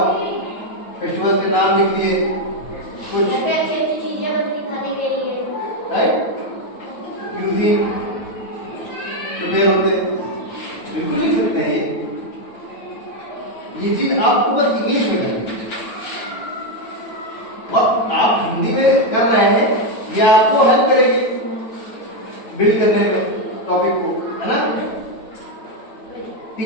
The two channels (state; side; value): late; right; 9.1 ms